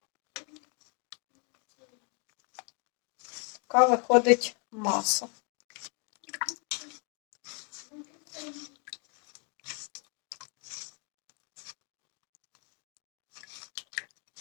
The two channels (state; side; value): quieter; right; 36.7 dB